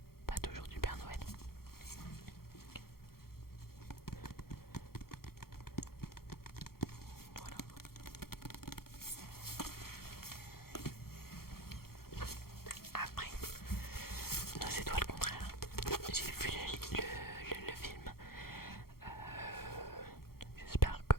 pas toujours du Père Noël. Voilà. Après, non, c'est toi le contraire. J'ai vu le film. J'espère que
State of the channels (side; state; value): right; late; 0.94 ms